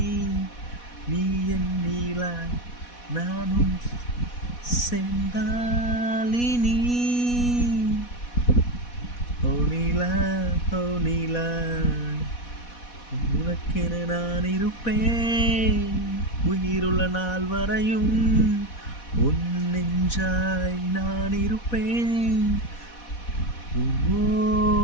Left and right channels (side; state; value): right; late; 4.1 ms